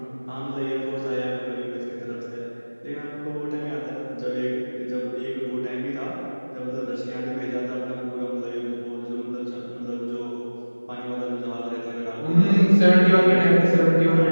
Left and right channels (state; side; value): inverted; both; correlation -1.00